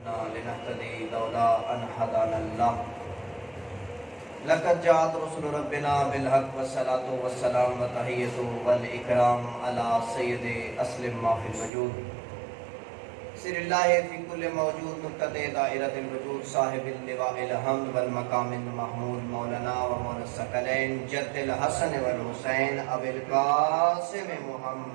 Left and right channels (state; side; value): drops out; left; at 11.7 s